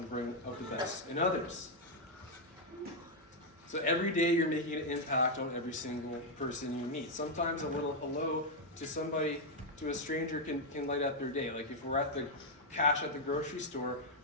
bring out the best in others. So every day you're making an impact on every single person you meet. Sometimes a little hello to somebody, to a stranger can light up their day. Like if we're at the cash at the grocery store,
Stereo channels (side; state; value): both; normal; correlation -0.01